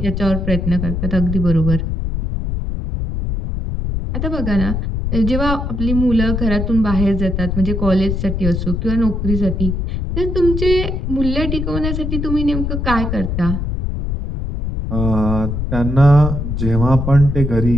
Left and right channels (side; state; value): left; noise; rumble, 2 dB below the sound